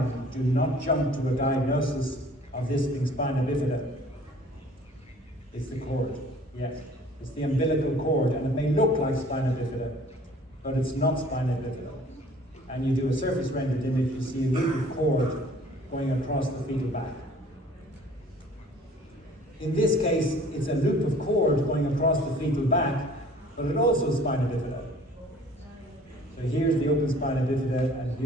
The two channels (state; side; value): normal; both; correlation 0.52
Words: do not jump to a diagnosis of this being spina bifida. It's the cord, yes. It's the umbilical cord, and it may look like spina bifida, but it's not spina bifida. And you do a surface rendered image, you see a loop of cord going across the fetal back. In this case, it's a loop of cord going across the fetal back, but it also is spina bifida. So here's the open spina bifida, and